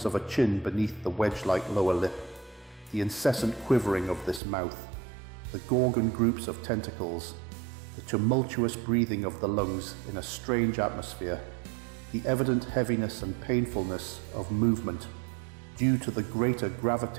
of a chin beneath the wedge-like lower lip, the incessant quivering of this mouth, the gorgon groups of tentacles, the tumultuous breathing of the lungs in a strange atmosphere, the evident heaviness and painfulness of movement due to the greater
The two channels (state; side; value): drops out; left; at 4.4 s